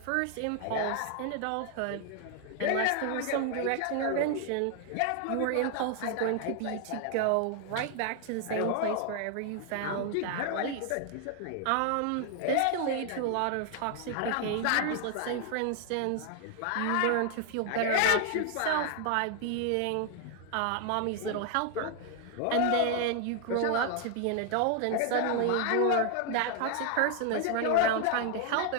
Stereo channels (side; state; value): both; different; correlation 0.00